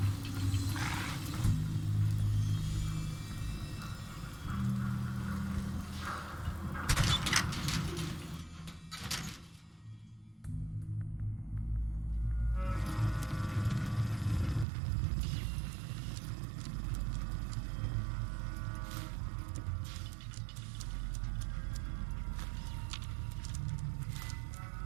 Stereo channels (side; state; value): left; drops out; at 14.7 s